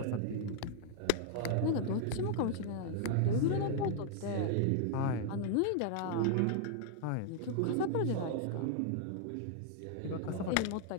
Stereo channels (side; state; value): both; different; correlation -0.01